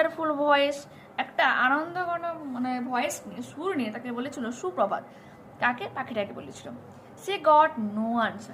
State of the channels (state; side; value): identical; both; correlation 1.00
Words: voice, একটা আনন্দঘন ভয়েস নিয়ে, সুর নিয়ে তাকে বলেছিল সুপ্রভাত। কাকে? পাখিটাকে বলেছিল। সে গট নো